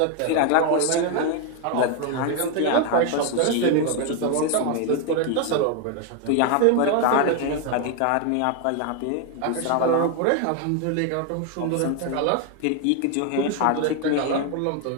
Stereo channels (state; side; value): different; both; correlation 0.01